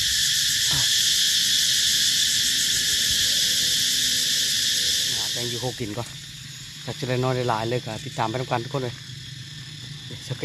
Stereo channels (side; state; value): both; identical; correlation 1.00